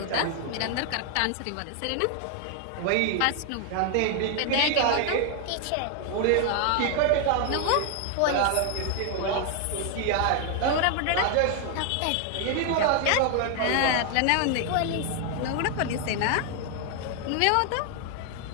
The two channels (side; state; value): both; different; correlation 0.00